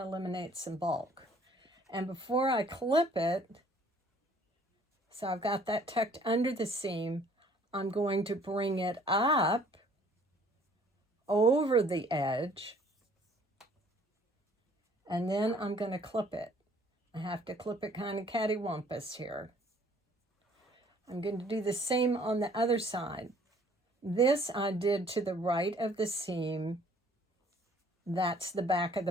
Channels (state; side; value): normal; both; correlation 0.57